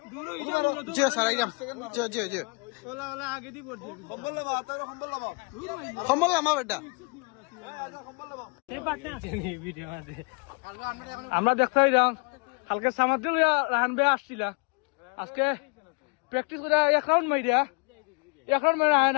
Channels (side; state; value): right; quieter; 33.1 dB